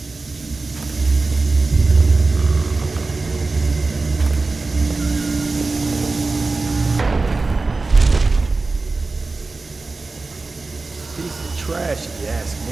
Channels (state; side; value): quieter; left; 3.7 dB